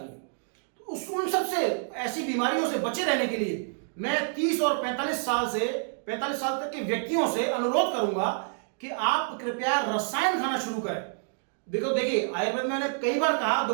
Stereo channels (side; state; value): left; silent; digital silence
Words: हैं। तो उन सबसे ऐसी बीमारियों से बचे रहने के लिए मैं 30 और 45 साल तक के व्यक्तियों से अनुरोध करूंगा कि आप कृपया रसायन खाना शुरू करें। देखो, देखिए, आयुर्वेद में मैंने कई बार कहा,